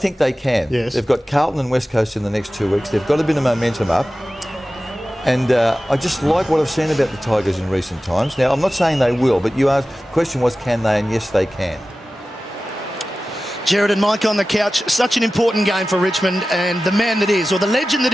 they can. Yes. They've got Carlton and West Coast in the next 2 weeks. They've got a bit of momentum up. And I just like what I've seen about the Tigers in recent times. Now, I'm not saying they will, but the question was, can they? And yes, they can. Jared and Mike on the couch. Such an important game for Richmond, and the man that is, or the legend that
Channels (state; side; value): normal; both; correlation 0.95